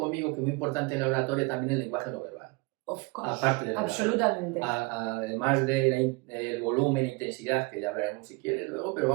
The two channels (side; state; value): left; quieter; 26.9 dB